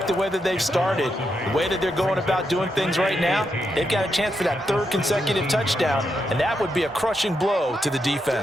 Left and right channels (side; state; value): both; normal; correlation 0.83